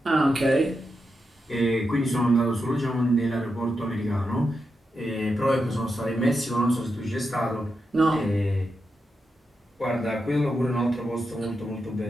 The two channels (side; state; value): both; normal; correlation 0.87